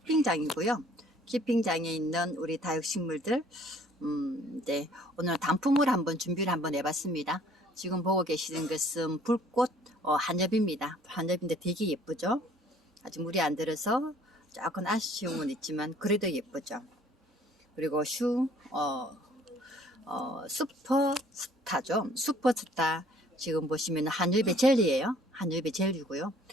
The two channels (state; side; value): normal; both; correlation 0.56